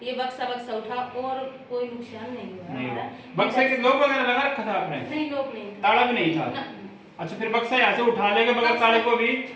ये बक्सा उठा और कोई नुकसान नहीं हुआ हमारा। बक्से के लोग वगैरह लगा रखा था आपने? नहीं, लोग नहीं, ताला भी नहीं था। अच्छा, फिर बक्सा यहाँ से उठा लेंगे बगैर ताले को भी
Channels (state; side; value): identical; both; correlation 1.00